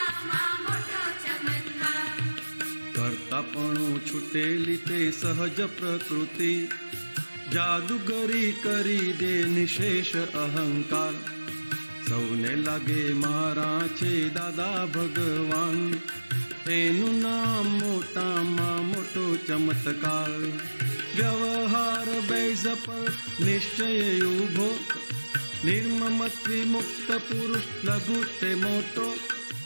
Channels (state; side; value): inverted; both; correlation -1.00